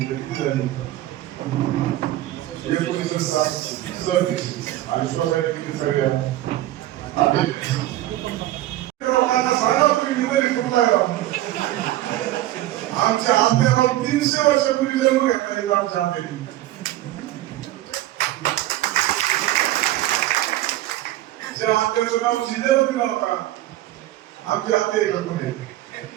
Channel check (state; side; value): quieter; left; 15.0 dB